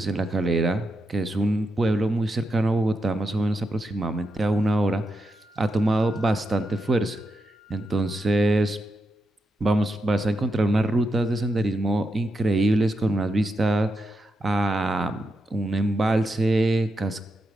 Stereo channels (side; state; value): both; normal; correlation 0.85